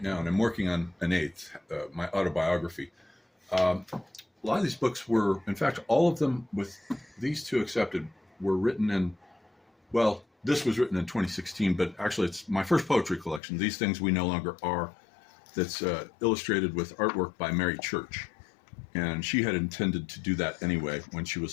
And I'm working on an 8th, my autobiography. A lot of these books were, in fact, all of them with these 2 accepted, were written in, well, this was written in 2016, but actually it's my first poetry collection. These Things We No Longer Are, that's illustrated with artwork by Mary Church. And she had intended to do that anyway when she was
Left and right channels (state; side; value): drops out; right; at 13.4 s